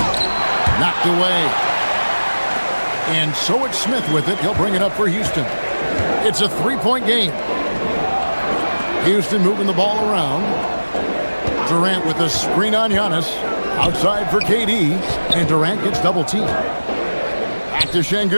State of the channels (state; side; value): inverted; both; correlation -1.00